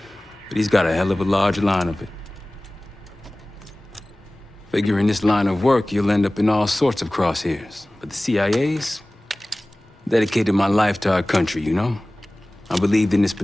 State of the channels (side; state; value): both; normal; correlation 0.98